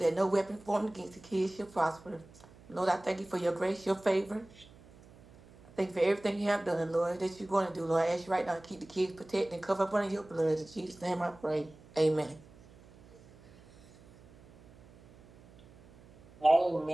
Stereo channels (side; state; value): right; noise; hum, 23 dB below the sound